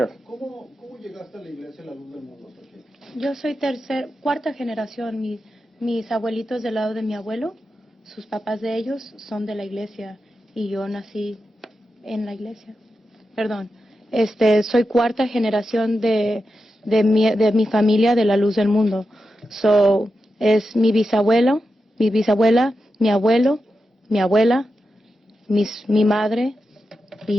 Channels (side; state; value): both; normal; correlation 0.89